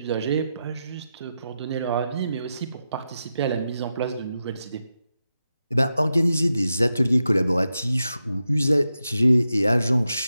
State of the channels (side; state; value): both; inverted; correlation -0.89